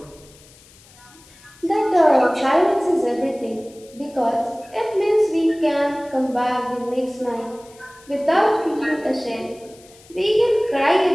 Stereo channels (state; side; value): noise; left; hiss, 25 dB below the sound